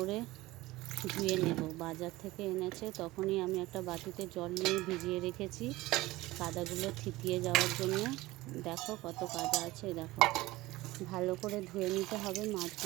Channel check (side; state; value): left; quieter; 18.9 dB